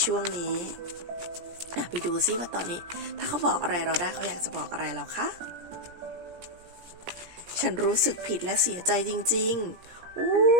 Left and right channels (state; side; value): late; left; 17 ms